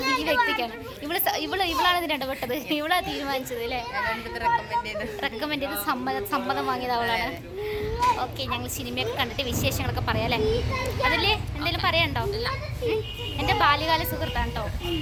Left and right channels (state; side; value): identical; both; correlation 1.00